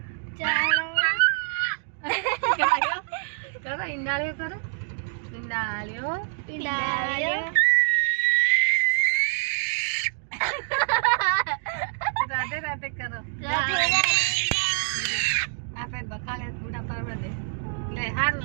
चरवा करो ईंडाळ्यो करो ईंडाळ्यो राधे राधे करो आपे बखाले पूरा परवर दे ले हारू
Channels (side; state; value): left; silent; digital silence